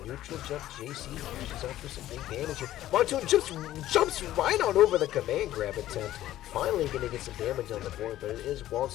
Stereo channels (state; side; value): quieter; right; 13.8 dB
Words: neutral jump JC, catches up for some big damage here. Monsoon jumps right on over the command grab attempt. Finally gonna get some damage on the board, but it is